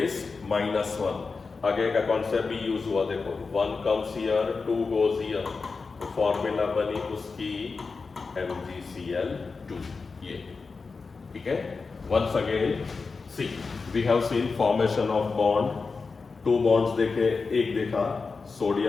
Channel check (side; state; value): right; quieter; 4.5 dB